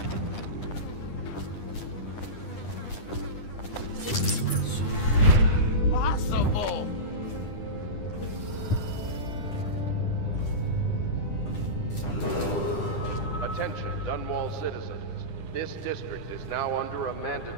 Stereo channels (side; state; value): right; late; 10 ms